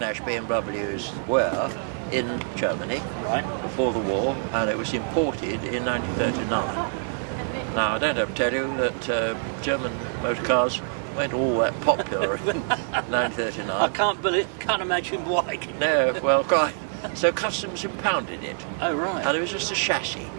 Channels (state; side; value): silent; left; digital silence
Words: BMWs were in Germany before the war, and it was imported in 1939. Now, I don't have to tell you that German motor cars weren't all that popular in 1939. I can't imagine why. No, well, quite. So customs impounded it. Oh, right. And it was just a chassis.